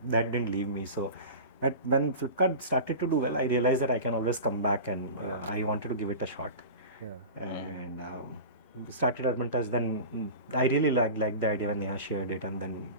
didn't leave me. So when Flipkart started to do well, I realized that I can always come back and I wanted to give it a shot. Yeah. And started Urban Touch. Then I really liked the idea when Neha shared it, and then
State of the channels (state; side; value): inverted; both; correlation -0.32